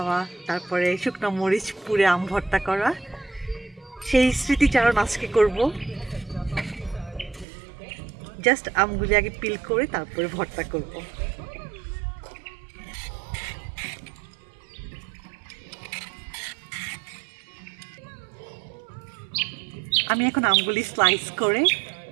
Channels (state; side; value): drops out; left; at 7.5 s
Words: তারপরে শুকনো মরিচ পুড়ে আম ভর্তা করা, সেই স্মৃতিচারণ আজকে করব। জাস্ট আমগুলি আগে পিল করে তারপরে ভর্তা করব। আমি এখন আমগুলি স্লাইস করে